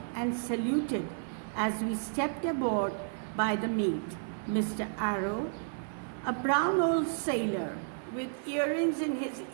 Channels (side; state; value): left; silent; 56 dB below the other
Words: and saluted as we stepped aboard by the mate, Mr. Arrow, a brown old sailor with earrings in his